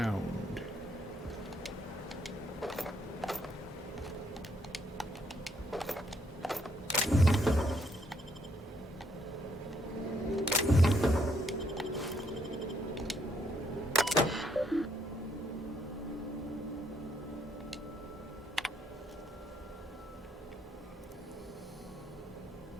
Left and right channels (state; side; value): normal; both; correlation 0.71